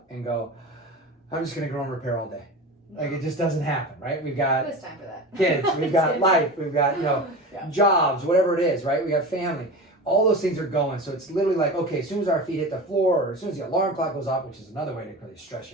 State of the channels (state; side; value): normal; both; correlation 0.30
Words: and go, I'm just going to grow and repair all day. Like, it just doesn't happen, right? We've got Who has time for that? kids, we've got life, we've got, jobs, whatever it is, right? We got family. All those things are going. So it's literally like, okay, as soon as our feet hit the floor or as soon as the alarm clock goes off, which is another way to really stress